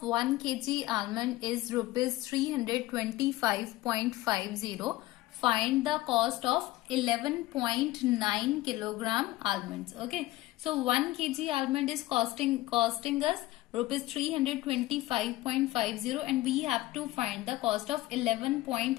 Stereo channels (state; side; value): quieter; right; 17.5 dB